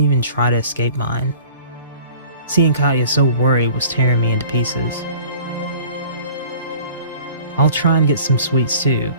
even try to escape mine. Seeing Katya so worried was tearing me into pieces. I'll try and get some sweets too.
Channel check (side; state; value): both; inverted; correlation -0.47